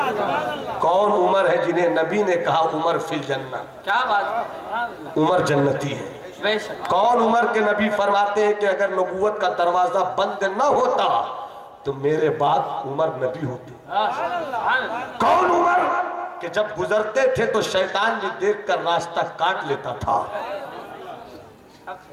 कौन उमर है जिन्हें नबी ने कहा उमर फिल जन्ना? क्या बात, उमर जन्नती है। कौन उमर के नबी फरमाते हैं कि अगर नबूवत का दरवाजा बंद न होता तो मेरे बाद उमर नबी होते। कौन उमर कि जब गुजरते थे तो शैतान भी देखकर रास्ता काट लेता था।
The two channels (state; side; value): identical; both; correlation 1.00